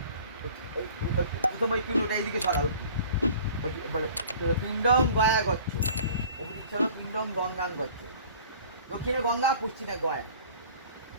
প্রথম ওই পিণ্ডটা এইদিকে সরাও, ওই বলো পিণ্ডম গয়া গচ্ছ, ওদিকে সরো পিণ্ডম গঙ্গান গচ্ছ, দক্ষিণে গঙ্গা পশ্চিমে গয়া,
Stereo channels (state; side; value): inverted; both; correlation -0.47